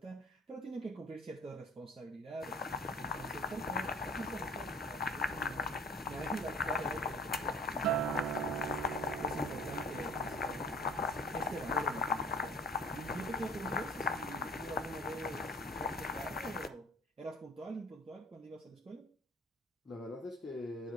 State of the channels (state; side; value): normal; both; correlation 0.48